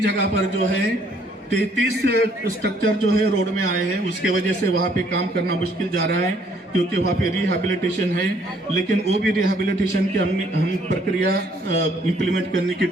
जगह पर जो है 33 स्ट्रक्चर जो है रोड में आए हैं, उसके वजह से वहाँ पे काम करना मुश्किल जा रहा है, क्योंकि वहाँ पे रिहैबिलिटेशन है। लेकिन वो भी रिहैबिलिटेशन की हम प्रक्रिया इम्प्लीमेंट करने की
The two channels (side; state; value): both; normal; correlation 0.64